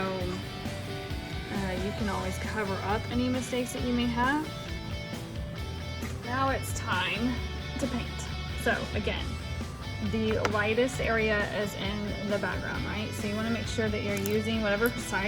you can always cover up any mistakes that you may have. Now it's time to paint. So again, the lightest area is in the background, right? So you want to make sure that you're using whatever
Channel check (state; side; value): identical; both; correlation 1.00